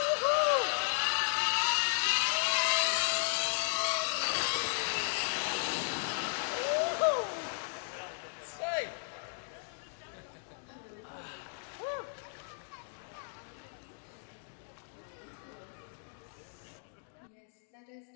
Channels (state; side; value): silent; right; digital silence